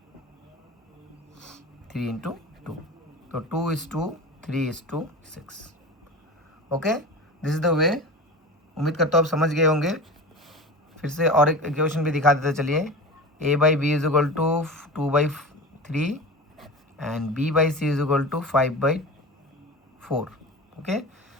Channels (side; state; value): both; normal; correlation 0.31